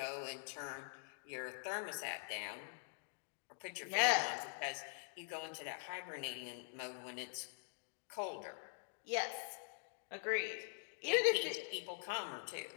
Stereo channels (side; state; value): right; silent; digital silence